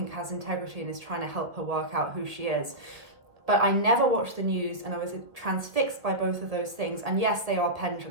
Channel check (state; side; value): late; left; 1.5 ms